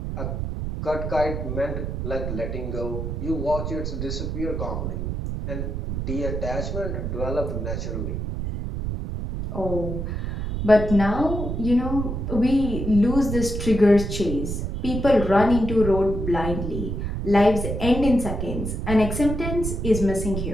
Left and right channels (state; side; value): noise; right; rumble, 3 dB below the sound